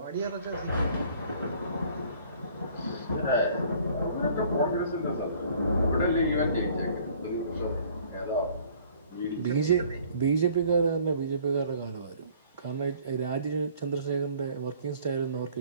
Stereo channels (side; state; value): both; inverted; correlation -0.55